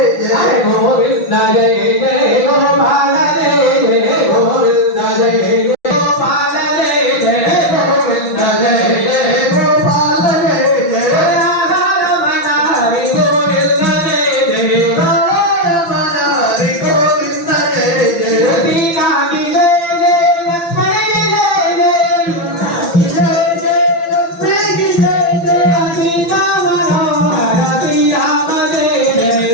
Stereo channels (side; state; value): right; late; 5.9 ms